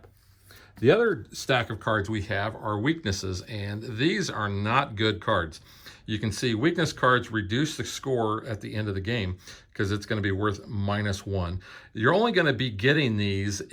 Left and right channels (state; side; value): identical; both; correlation 1.00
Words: The other stack of cards we have are weaknesses, and these are not good cards. you can see weakness cards reduce the score at the end of the game because it's going to be worth -1. You're only going to be getting these